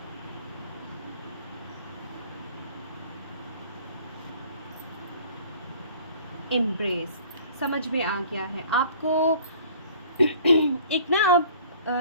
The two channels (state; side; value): inverted; both; correlation -0.51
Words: एम्ब्रेस। समझ में आ गया है आपको। एक ना आप